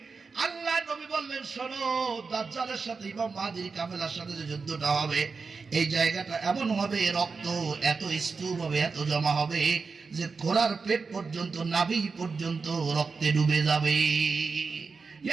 আল্লাহ নবী বললেন, শোনো, দাজ্জালের সাথে ইমাম মাহদীর কাফেলার সাথে যে যুদ্ধটা হবে এই জায়গাটা এমন হবে, রক্ত এত স্তূপ হবে, এত জমা হবে যে ঘোড়ার পেট পর্যন্ত, নাভি পর্যন্ত রক্তে ডুবে যাবে।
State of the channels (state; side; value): quieter; left; 4.7 dB